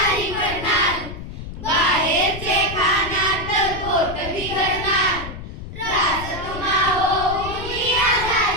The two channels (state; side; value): noise; left; rumble, 10 dB below the sound